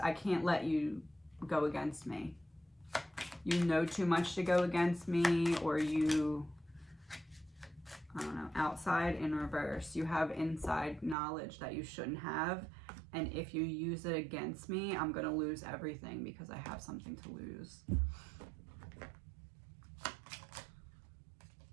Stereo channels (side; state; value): left; drops out; at 11.2 s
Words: I can't let you go against me. You know too much to go against me, or you, I don't know, outside in reverse. You have inside knowledge that you shouldn't have. And if you use it against me, I'm going to lose everything because I have something to lose.